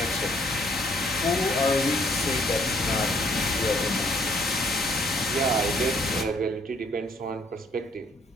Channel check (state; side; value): normal; both; correlation 0.65